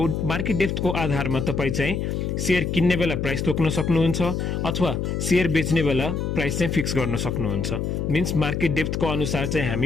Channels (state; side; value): noise; left; hum, 1 dB below the sound